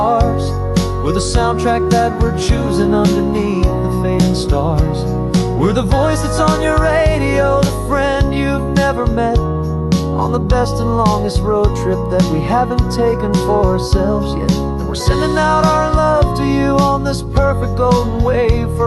with a soundtrack that we're choosing underneath the fading stars. We're the voice that's on your radio, the friend you've never met, on the best and longest road trip that we haven't taken for ourselves yet. And we're sending out our love to you on this perfect golden wave,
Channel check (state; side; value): identical; both; correlation 1.00